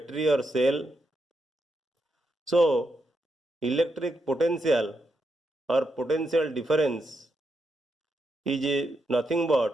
or cell. So, electric potential or potential difference is nothing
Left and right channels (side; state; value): both; normal; correlation 0.82